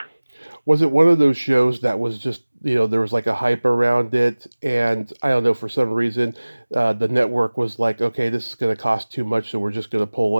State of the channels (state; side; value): inverted; both; correlation -1.00